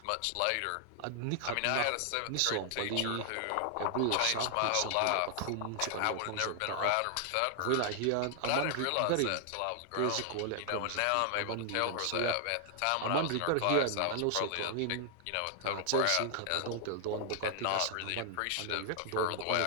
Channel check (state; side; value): different; both; correlation 0.00